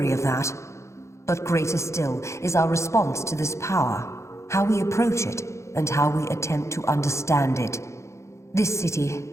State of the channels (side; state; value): right; late; 0.14 ms